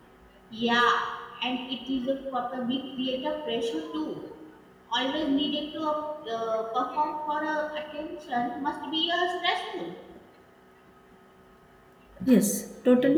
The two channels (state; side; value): identical; both; correlation 1.00